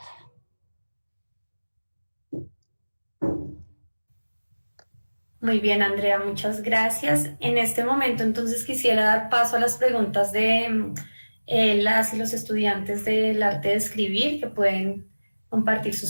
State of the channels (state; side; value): inverted; both; correlation -1.00